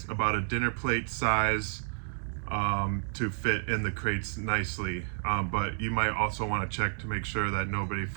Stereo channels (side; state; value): left; silent; digital silence